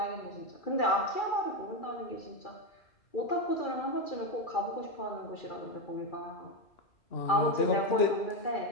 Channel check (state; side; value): late; right; 2.3 ms